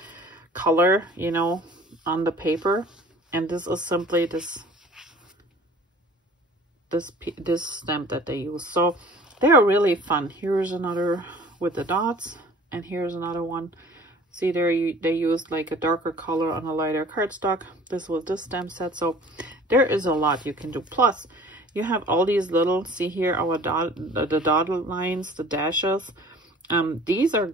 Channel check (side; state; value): both; normal; correlation 0.47